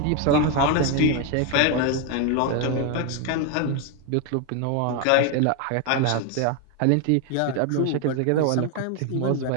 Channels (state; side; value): different; both; correlation 0.01